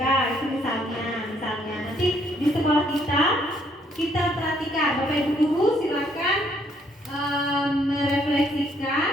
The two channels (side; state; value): both; normal; correlation 0.67